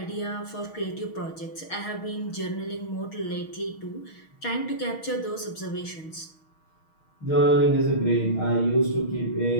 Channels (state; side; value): late; right; 6.4 ms